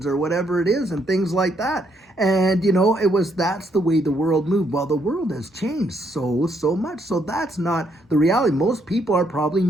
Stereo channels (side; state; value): both; normal; correlation 0.73